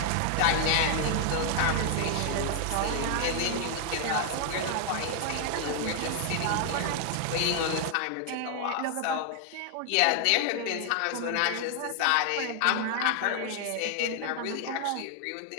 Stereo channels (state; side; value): different; both; correlation 0.00